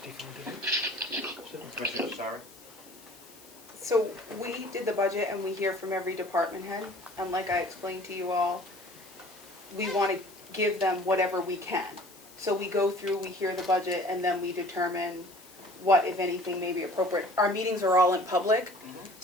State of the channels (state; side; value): noise; left; hiss, 22 dB below the sound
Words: defunded it. So, Commissioner Sorry? So we did the budget and we hear from every department head, and like I explained to you all, we want to give them whatever we can. So we go through, we hear the budget, and then we determine what, if anything, may be appropriate. Our meetings are all in public,